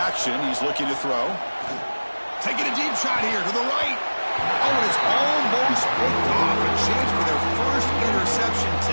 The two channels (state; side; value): inverted; both; correlation -1.00